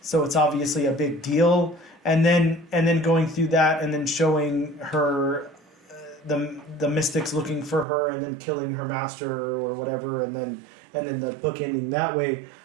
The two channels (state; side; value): drops out; left; at 7.9 s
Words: it's obviously a big deal. And then going through that and then showing her the mystics looking for her and then killing her master or whatever, and then the book ending that way.